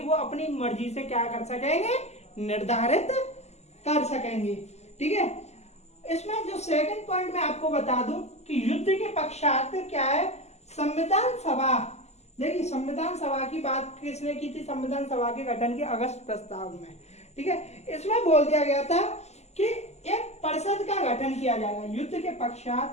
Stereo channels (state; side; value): late; right; 0.32 ms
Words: वो अपनी मर्जी से क्या कर सकेंगे, निर्धारित कर सकेंगे, ठीक है। इसमें जो सेकंड पॉइंट मैं आपको बता दूं कि युद्ध के पश्चात क्या है, संविधान सभा, देखिए संविधान सभा की बात किसने की थी, संविधान सभा के गठन के अगस्त प्रस्ताव में, ठीक है। इसमें बोल दिया गया था कि एक परिषद का गठन किया जाएगा युद्ध के